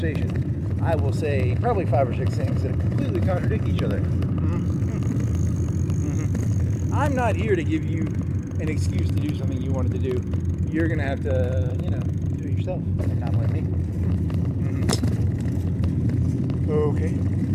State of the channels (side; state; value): both; identical; correlation 1.00